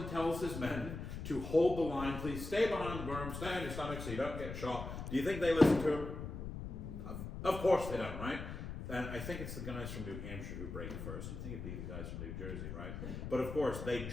tells his men to hold the line. Please stay behind the berm, stay on your stomach so you don't get shot. Do you think they listen to him? Of course they don't, right? And I think it's the guys from New Hampshire who break first. You'd think it'd be the guys from New Jersey, right? But of course, they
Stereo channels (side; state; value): left; noise; rumble, 7 dB below the sound